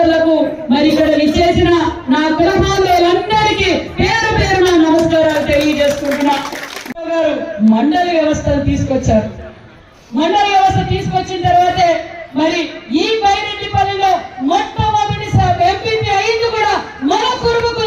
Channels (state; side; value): identical; both; correlation 1.00